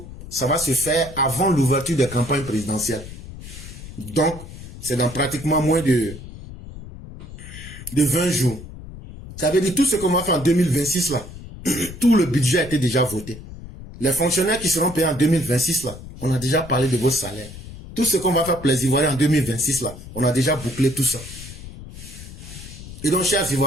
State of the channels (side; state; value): left; noise; rumble, 14 dB below the sound